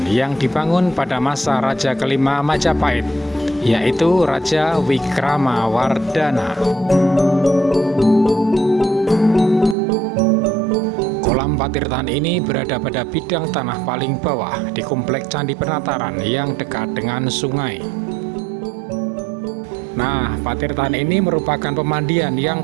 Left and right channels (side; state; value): left; drops out; at 9.8 s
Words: yang dibangun pada masa Raja kelima Majapahit, yaitu Raja Wikramawardhana. Kolam patirtaan ini berada pada bidang tanah paling bawah di komplek Candi Penataran yang dekat dengan sungai. Nah, patirtaan ini merupakan pemandian